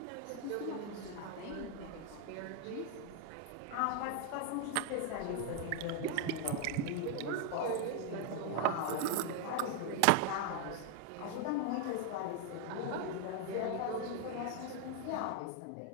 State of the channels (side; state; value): both; different; correlation 0.00